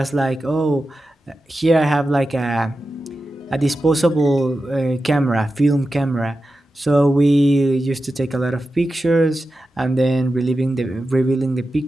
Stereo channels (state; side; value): normal; both; correlation 0.92